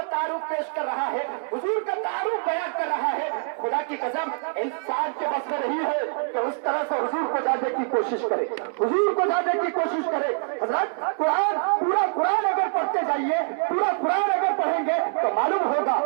तारुफ पेश कर रहा है, हुजूर का तारुफ बयान कर रहा है, खुदा की कसम इंसान के बस में नहीं है कि उस तरह से हुजूर को जानने की कोशिश करे, हुजूर को जानने की कोशिश करे। हज़रत कुरान, पूरा कुरान अगर पढ़ते जाइए, पूरा कुरान अगर पढ़ेंगे तो मालूम होगा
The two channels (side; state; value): left; silent; 62 dB below the other